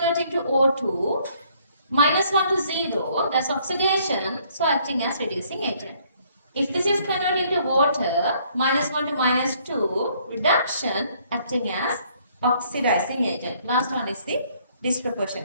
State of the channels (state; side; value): inverted; both; correlation -0.64